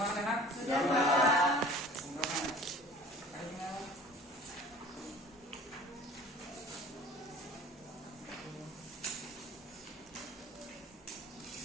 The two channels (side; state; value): both; normal; correlation 0.46